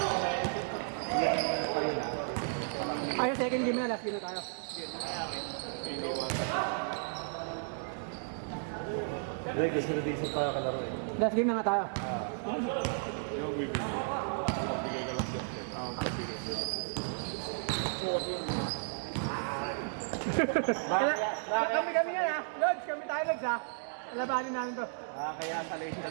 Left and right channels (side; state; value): left; silent; digital silence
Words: Ay, second game na, last game na tayo. Hindi, gusto na decent tayo kalaro eh. Last game na nga tayo. Kami yan ha. Lods, kami tayo Lods ha. Labanin namin to. Kaya sa late